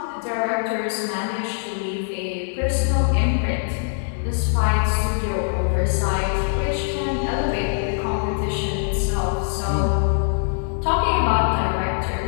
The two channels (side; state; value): right; silent; 64 dB below the other